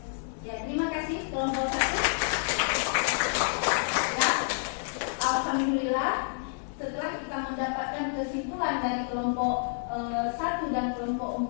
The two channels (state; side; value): silent; right; digital silence